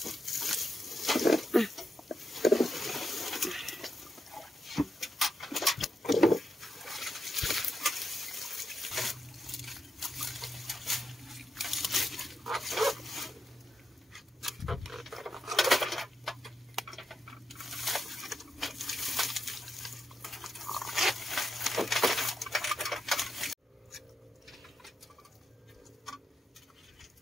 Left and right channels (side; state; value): both; normal; correlation 0.85